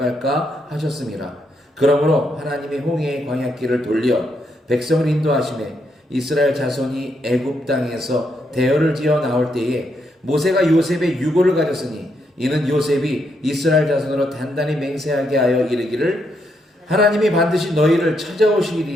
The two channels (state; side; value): normal; both; correlation 0.78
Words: 하셨음이라. 그러므로 하나님이 홍해의 광야길을 돌려 백성을 인도하시매 이스라엘 자손이 애굽 땅에서 대열을 지어 나올 때에 모세가 요셉의 유고를 가졌으니 이는 요셉이 이스라엘 자손으로 단단히 맹세하게 하여 이르기를 하나님이 반드시 너희를